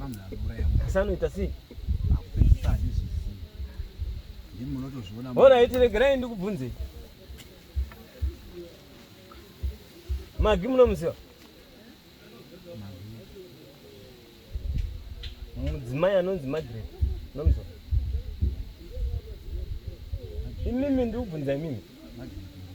munhu anouraya munhu. Asi anoita sei? Akupedzisa handizvizivi. Ndimi munotozviona. Alright, regerai ndikubvunzei. Magi munomuziva? Mudzimai anonzi Margaret. Munomuziva? Imimi ndikubvunza imimi.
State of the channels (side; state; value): both; identical; correlation 1.00